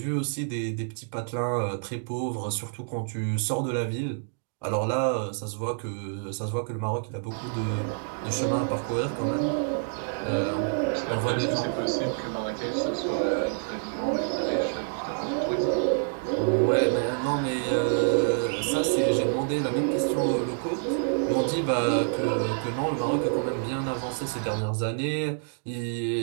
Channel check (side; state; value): left; silent; digital silence